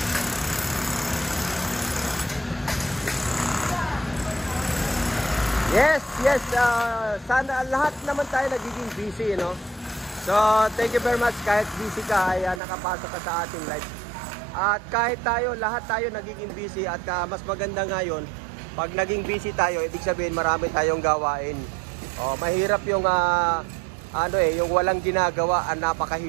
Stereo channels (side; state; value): left; drops out; at 12.6 s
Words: Yes, sana lahat naman tayo nagiging busy, no? So, thank you very much. Kahit busy ka, ay nakapasok ka sa ating live. At kahit lahat tayo nagiging busy at mas maganda ngayon, pag naging busy tayo, ibig sabihin marami tayong gawain. Mahirap yung yung walang ginagawa,